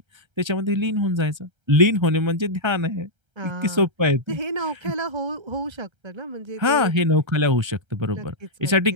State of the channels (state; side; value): late; left; 1.3 ms